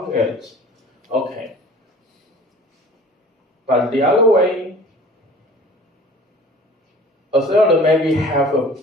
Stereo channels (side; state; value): both; normal; correlation 0.45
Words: it. Okay. But the other way, a seller maybe have a